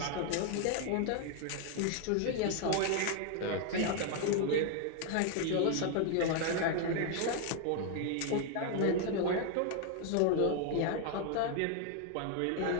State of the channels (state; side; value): different; both; correlation 0.00